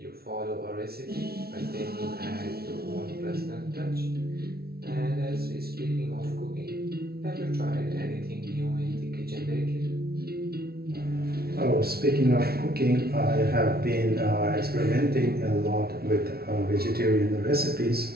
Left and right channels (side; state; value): left; late; 0.45 ms